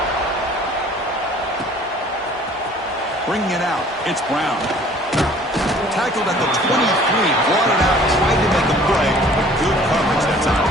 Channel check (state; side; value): normal; both; correlation 0.52